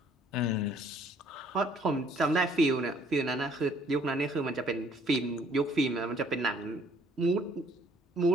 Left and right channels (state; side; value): normal; both; correlation 0.61